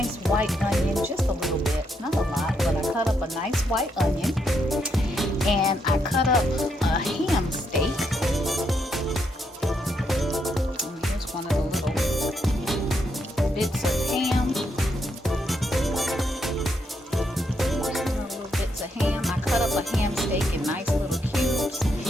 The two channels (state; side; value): normal; both; correlation 0.78